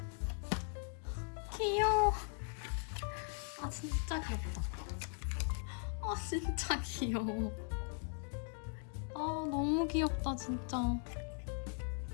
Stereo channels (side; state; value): right; silent; 52 dB below the other